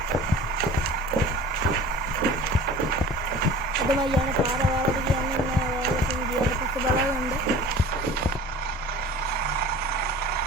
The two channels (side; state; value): both; normal; correlation 0.42